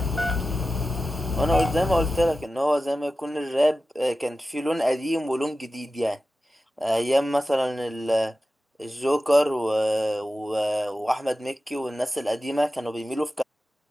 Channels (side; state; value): both; normal; correlation 0.93